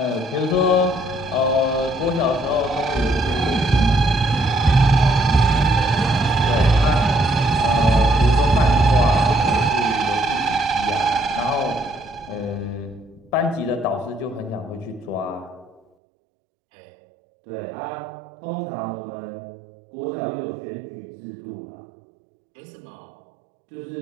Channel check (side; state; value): left; drops out; at 15.8 s